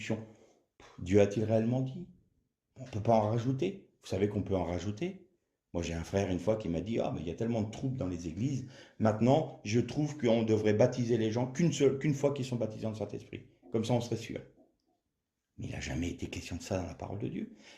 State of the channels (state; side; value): identical; both; correlation 1.00